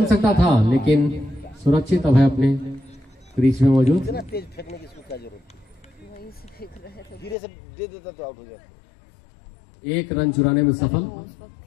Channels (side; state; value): right; drops out; at 7.4 s